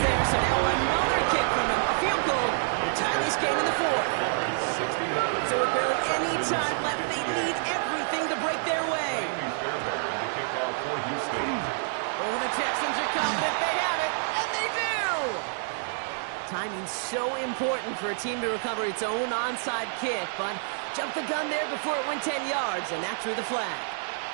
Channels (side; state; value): left; silent; digital silence